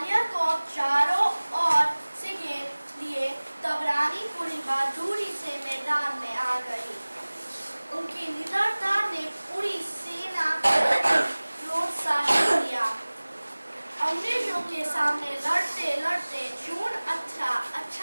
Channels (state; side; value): inverted; both; correlation -1.00